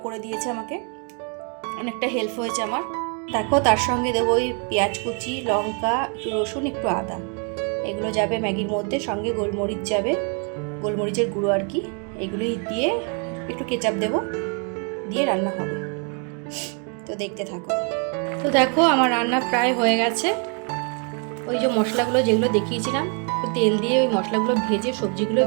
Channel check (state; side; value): quieter; left; 39.0 dB